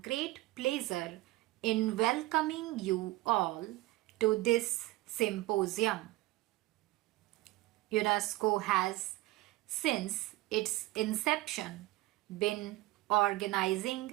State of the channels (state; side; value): quieter; left; 18.8 dB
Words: great pleasure in welcoming you all to this symposium. UNESCO has, since its inception, been